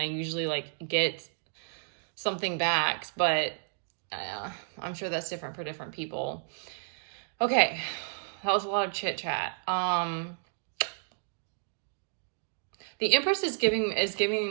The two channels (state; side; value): silent; left; digital silence